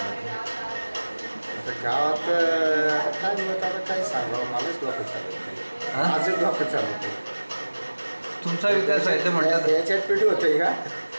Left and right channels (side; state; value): both; inverted; correlation -1.00